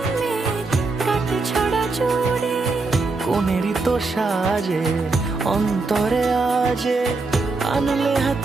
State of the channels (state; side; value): quieter; left; 3.7 dB